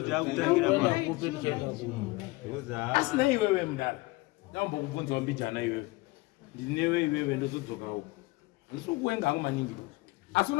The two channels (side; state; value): right; quieter; 22.4 dB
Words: taakutangira asina iwewe mudara ndambokubvunzawo mbijana iwewe ndinewe iwewe ndozodzokawo ndisikuwenga hangu maningi asi